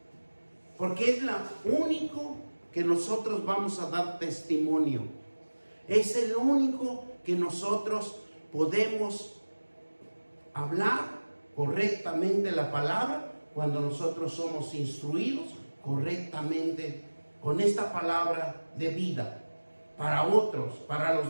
Porque es la único que nosotros vamos a dar testimonio. Es el único que nosotros podemos hablar correctamente la palabra cuando nosotros somos instruidos correctamente con esta palabra de vida para otros, para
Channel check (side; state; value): both; inverted; correlation -1.00